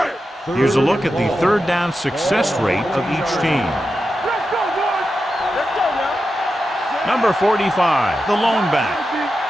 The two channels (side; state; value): both; normal; correlation 0.90